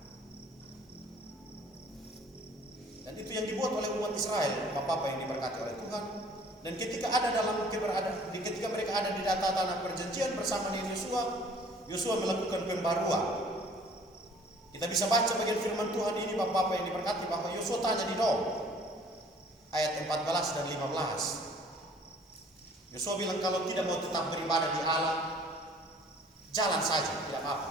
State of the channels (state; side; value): normal; both; correlation 0.54